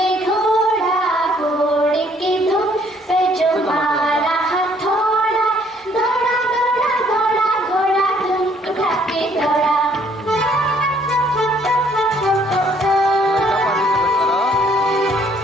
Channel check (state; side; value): normal; both; correlation 0.63